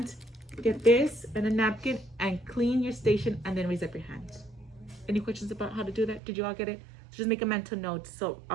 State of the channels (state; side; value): drops out; left; at 6.2 s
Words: get this and a napkin and clean your station and then raise up your hand. Any questions about how to do that? Did you all get it? Just make a mental note. So